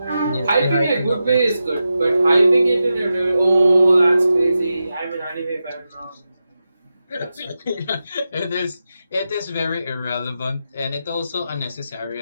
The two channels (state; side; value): inverted; both; correlation -0.90